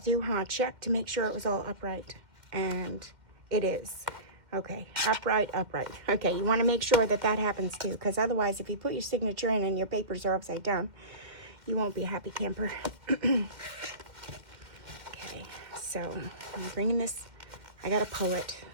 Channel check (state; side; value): late; left; 2.1 ms